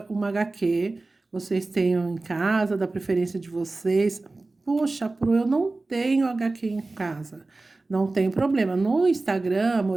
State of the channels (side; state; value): left; quieter; 3.3 dB